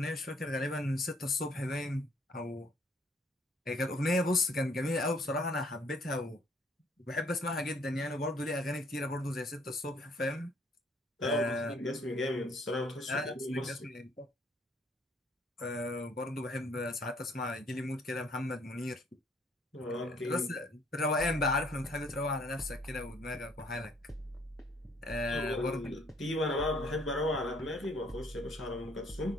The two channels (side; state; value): both; normal; correlation 0.63